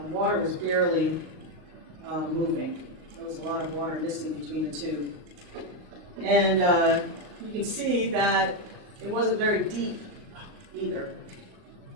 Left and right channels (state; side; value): late; left; 38 ms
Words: water was barely moving. There was a lot of water missing between the two. And you can see that it wasn't very deep either.